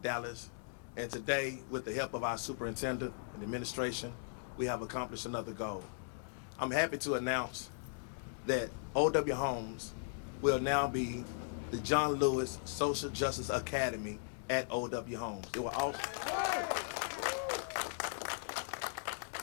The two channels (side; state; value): right; silent; digital silence